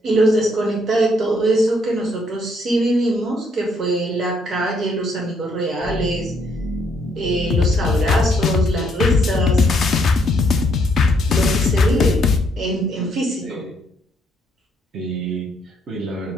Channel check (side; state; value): both; normal; correlation 0.71